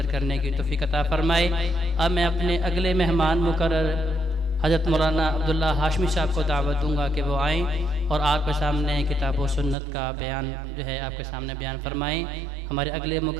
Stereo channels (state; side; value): drops out; left; at 9.8 s